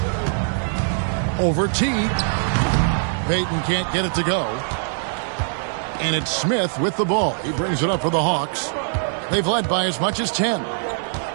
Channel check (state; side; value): silent; left; digital silence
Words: Over Teague. Payton can't get it to go. And it's Smith with the ball. He brings it up for the Hawks. They've led by as much as 10.